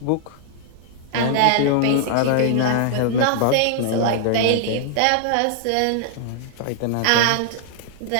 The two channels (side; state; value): both; different; correlation 0.00